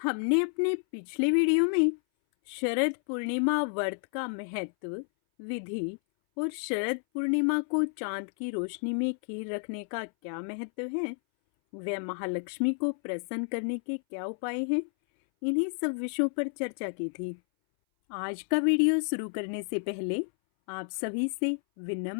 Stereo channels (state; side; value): silent; right; 58 dB below the other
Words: अपने पिछले वीडियो में शरद पूर्णिमा व्रत का महत्व, विधि और शरद पूर्णिमा को चांद की रोशनी में खीर रखने का क्या महत्व है, वह महालक्ष्मी को प्रसन्न करने के क्या उपाय हैं, इन्हीं सब विषयों पर चर्चा की थी। आज का वीडियो शुरू करने से पहले आप सभी से